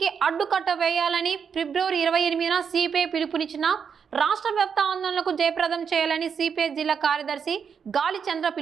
అడ్డుకట్ట వేయాలని ఫిబ్రవరి 28న సిపిఐ పిలుపునిచ్చిన రాష్ట్ర వ్యాప్త ఆందోళనకు జయప్రదం చేయాలని సిపిఐ జిల్లా కార్యదర్శి గాలి చంద్ర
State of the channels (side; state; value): left; quieter; 6.8 dB